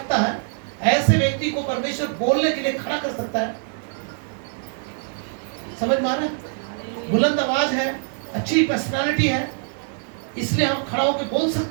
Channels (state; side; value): silent; left; 63 dB below the other